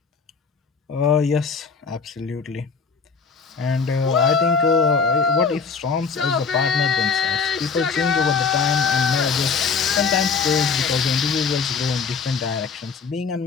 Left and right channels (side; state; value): right; quieter; 5.4 dB